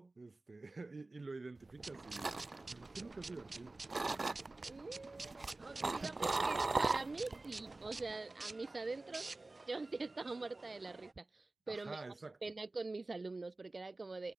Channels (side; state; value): left; quieter; 3.1 dB